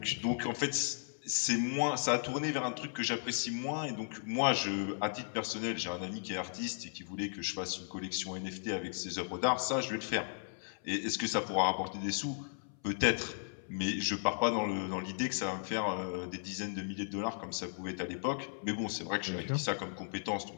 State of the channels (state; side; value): silent; right; 54 dB below the other